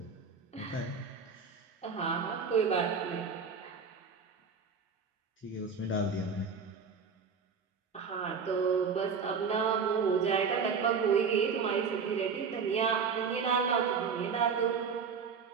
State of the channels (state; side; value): quieter; left; 5.7 dB